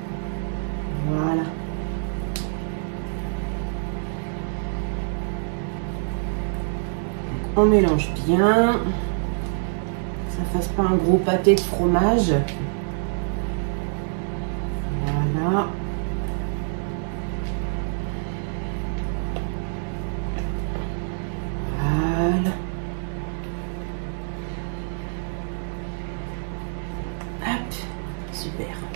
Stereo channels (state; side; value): silent; left; digital silence